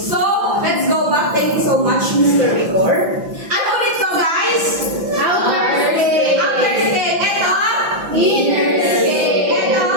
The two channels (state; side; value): late; left; 5.9 ms